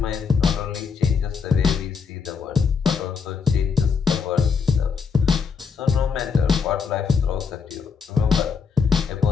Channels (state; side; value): quieter; right; 5.8 dB